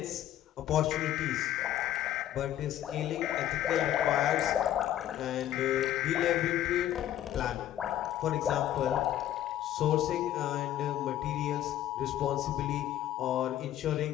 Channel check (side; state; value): right; quieter; 12.2 dB